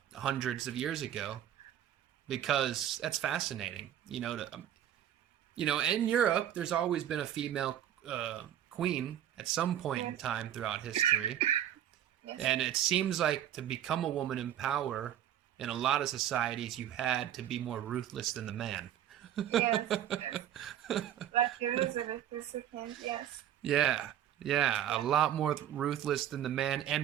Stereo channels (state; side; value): quieter; left; 10.9 dB